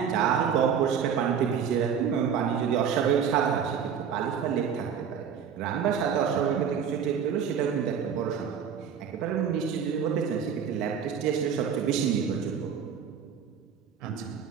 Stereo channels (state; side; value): quieter; left; 7.5 dB